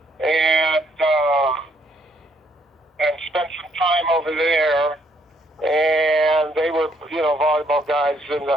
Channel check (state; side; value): normal; both; correlation 0.70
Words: and spent some time over there. And they were, you know, volleyball guys, and